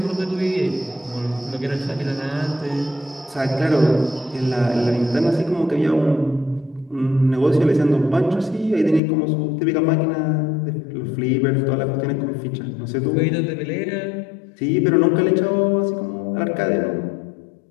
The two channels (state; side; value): drops out; right; at 9.0 s